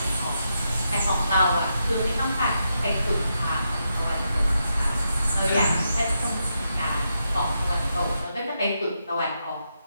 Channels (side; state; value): both; inverted; correlation -0.84